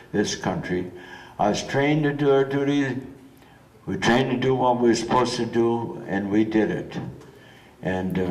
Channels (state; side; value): identical; both; correlation 1.00